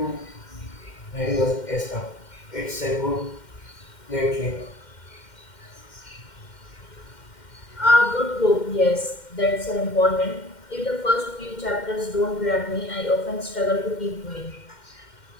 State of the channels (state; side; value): late; right; 2.1 ms